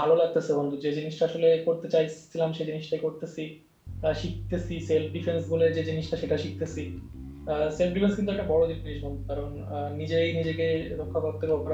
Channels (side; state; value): both; identical; correlation 1.00